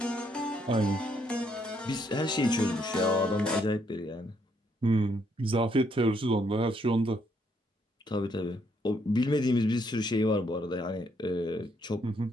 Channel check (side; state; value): both; normal; correlation 0.72